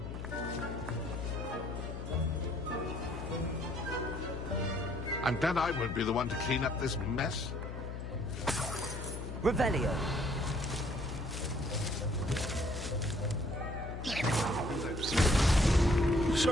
I'm glad I won't be the one to clean up this mess. Revelio.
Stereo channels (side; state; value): left; noise; hum, 7 dB below the sound